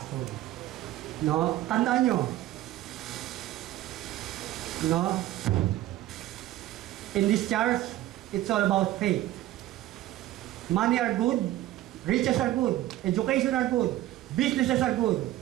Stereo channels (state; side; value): quieter; left; 14.8 dB